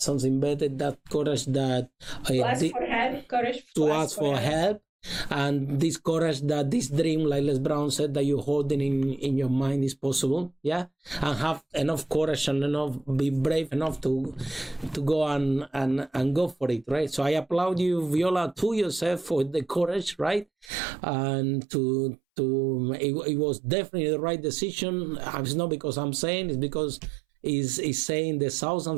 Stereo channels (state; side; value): drops out; left; at 20.7 s